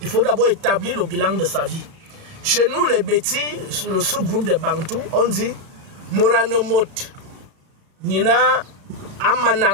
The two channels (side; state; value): left; late; 34 ms